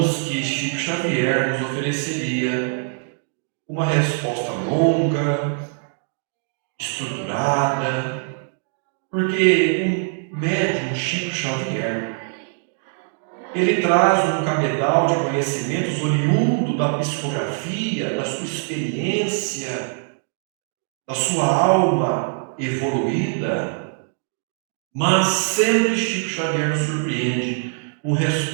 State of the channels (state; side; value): silent; left; 56 dB below the other